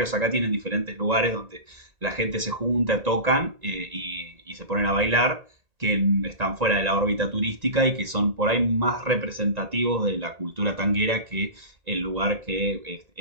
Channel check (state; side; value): late; left; 1.9 ms